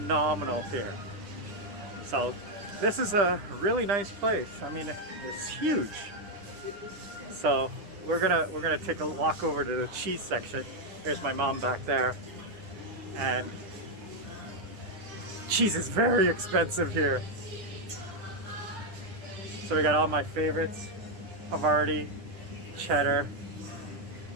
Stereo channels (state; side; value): late; left; 9.9 ms